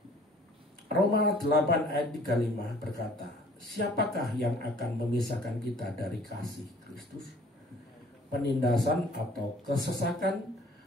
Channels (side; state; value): both; normal; correlation 0.54